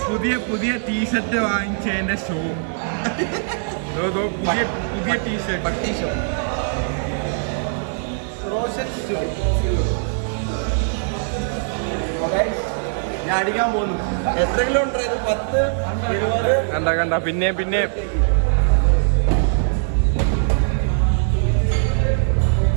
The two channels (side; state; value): left; silent; digital silence